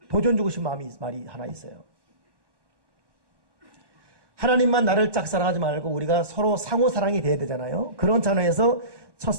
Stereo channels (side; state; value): left; late; 1.1 ms